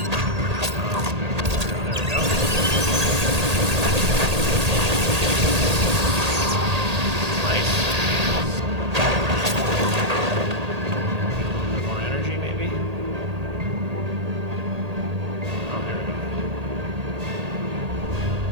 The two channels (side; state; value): left; late; 1.8 ms